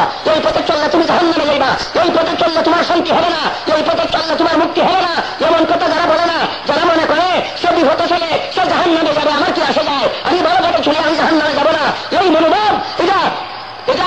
এই পথে চললে তুমি জাহান্নামে যাইবা, এই পথে চললে তোমার শান্তি হবে না, এই পথে চললে তোমার মুক্তি হবে না, এমন কথা যারা বলে না, যারা মনে করে সে বিপথে চলে সে জাহান্নামে যাবে, আমার কি আসে যায়, আমি ভালো পথে চলে আমি জাহান্নামে যাব না, এই মনোভাব এটা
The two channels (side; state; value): both; identical; correlation 1.00